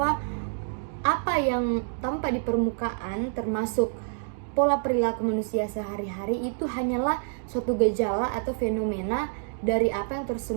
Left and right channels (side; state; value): left; silent; digital silence